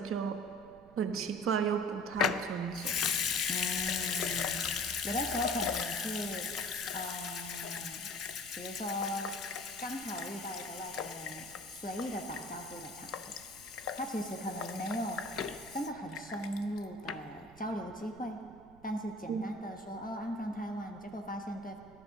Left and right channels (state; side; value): noise; right; rumble, 22 dB below the sound